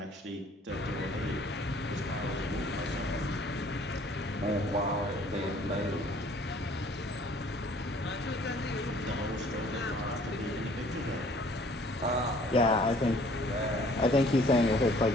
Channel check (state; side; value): normal; both; correlation 0.56